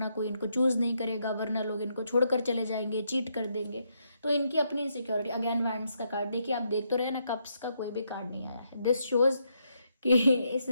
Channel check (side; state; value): both; inverted; correlation -0.78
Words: कोई इनको चूज नहीं करेगा, वरना लोग इनको छोड़कर चले जाएंगे, चीट कर देंगे। तो इनकी अपनी इनसिक्योरिटी। अगेन वैंड्स का कार्ड देखिए, आप देख तो रहे हैं ना, कप्स का कोई भी कार्ड नहीं आया है। दिस शोज कि इस